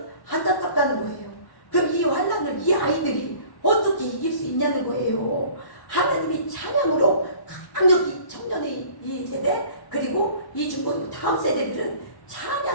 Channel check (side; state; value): right; late; 1.1 ms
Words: 안타깝다는 거예요. 그럼 이 환난을 이 아이들이 어떻게 이길 수 있냐는 거예요. 하나님이 찬양으로 강력히 청년의 이 세대 그리고 이 중고등 다음 세대들은